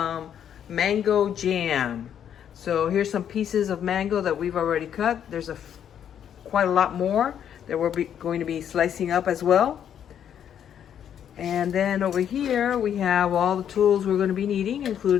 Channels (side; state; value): right; quieter; 9.2 dB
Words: mango jam. So here's some pieces of mango that we've already cut. There's quite a lot more that we're going to be slicing up as well. And then over here we have all the tools we're going to be needing,